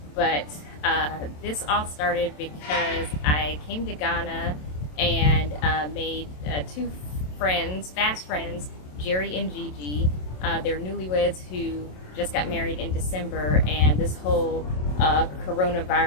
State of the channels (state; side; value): late; right; 27 ms